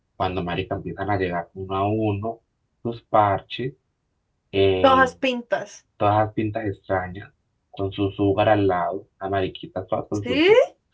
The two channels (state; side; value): identical; both; correlation 1.00